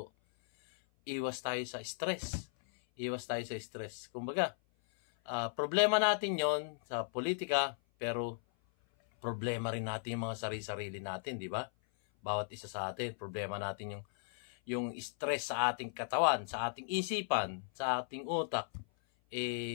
iwas tayo sa stress. Kumbaga, problema natin yon sa politika, pero problema rin natin yung mga sarili-sarili natin, di ba? Bawat isa sa atin, problema natin yung stress sa ating katawan, sa ating isipan, sa ating utak,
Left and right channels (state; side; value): silent; right; 53 dB below the other